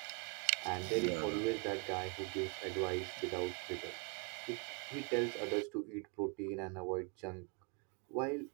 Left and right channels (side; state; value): left; quieter; 35.5 dB